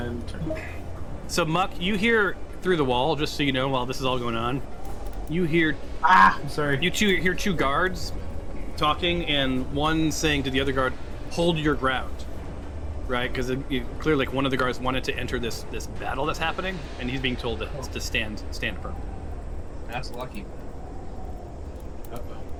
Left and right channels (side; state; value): both; identical; correlation 1.00